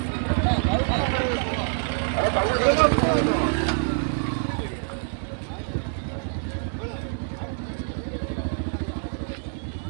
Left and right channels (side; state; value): left; silent; 61 dB below the other